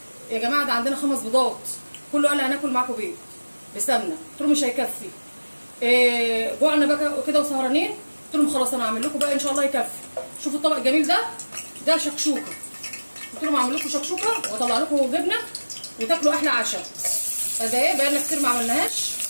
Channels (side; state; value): both; inverted; correlation -1.00